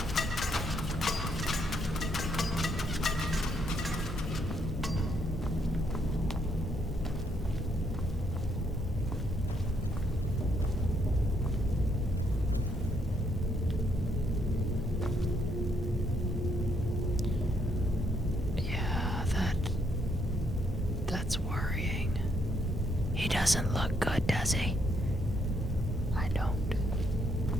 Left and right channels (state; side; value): normal; both; correlation 0.73